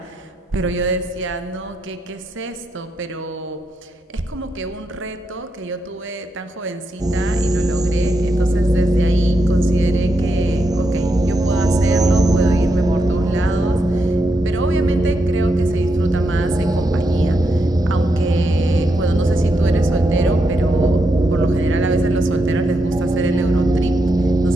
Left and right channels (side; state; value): both; normal; correlation 0.83